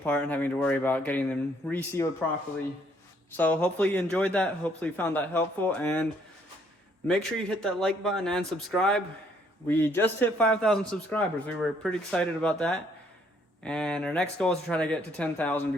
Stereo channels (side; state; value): both; normal; correlation 0.67